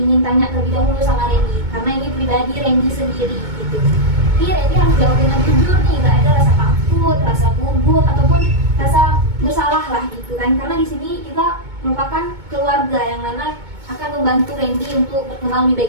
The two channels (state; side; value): late; left; 2.2 ms